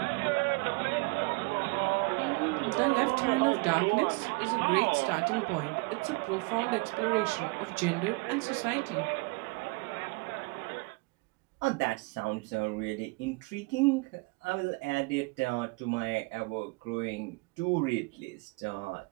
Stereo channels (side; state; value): left; quieter; 28.0 dB